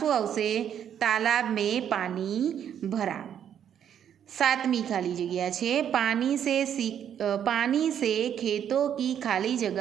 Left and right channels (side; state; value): left; quieter; 9.2 dB